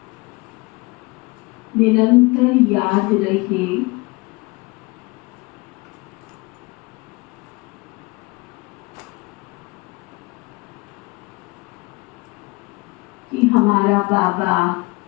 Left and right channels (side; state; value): right; quieter; 25.9 dB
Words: निरंतर याद रहे कि हमारा बाबा